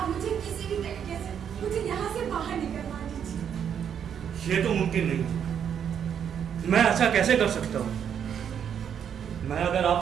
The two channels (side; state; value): left; quieter; 8.3 dB